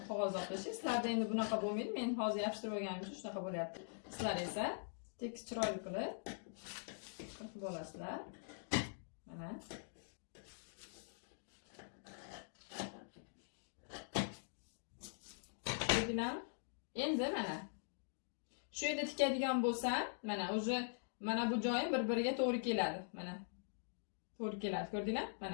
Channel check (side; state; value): right; silent; digital silence